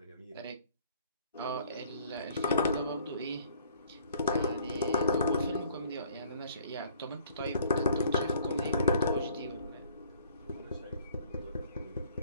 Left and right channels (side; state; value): both; inverted; correlation -0.57